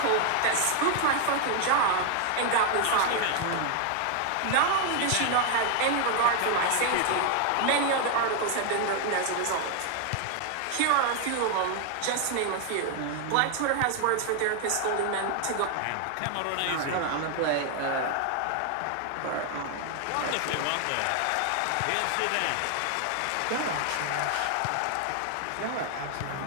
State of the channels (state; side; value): different; both; correlation 0.00